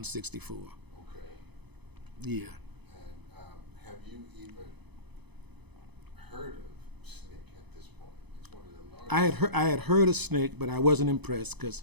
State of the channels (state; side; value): late; left; 0.99 ms